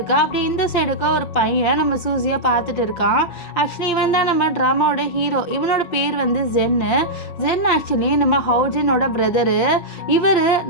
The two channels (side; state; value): right; late; 5.8 ms